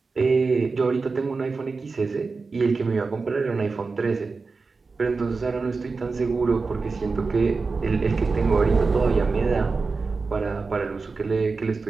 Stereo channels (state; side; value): quieter; left; 4.3 dB